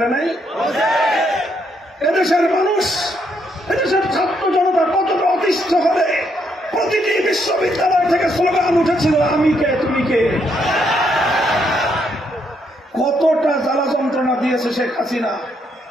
নাই? এদেশের মানুষ, এদেশের ছাত্র জনতা কতটা অতিষ্ঠ হলে প্রতিটি বিশ্ববিদ্যালয় থেকে স্লোগান উঠেছিল, আমি কে তুমি কে। কতটা জ্বালা যন্ত্রণা দিয়েছে শেখ হাসিনা,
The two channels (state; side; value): normal; both; correlation 0.75